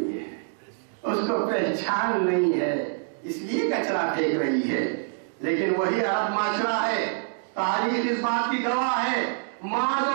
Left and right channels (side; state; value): left; silent; 61 dB below the other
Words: ہے، اس کو پہچان نہیں ہے، اس لیے کچرا پھینک رہی ہے۔ لیکن وہی عرب معاشرہ ہے، تاریخ اس بات کی گواہ ہے، ماذ